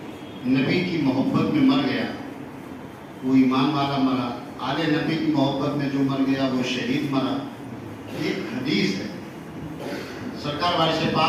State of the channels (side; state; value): both; identical; correlation 1.00